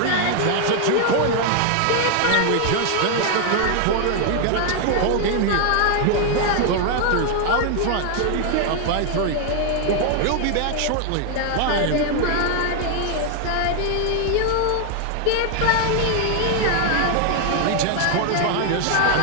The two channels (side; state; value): both; different; correlation 0.00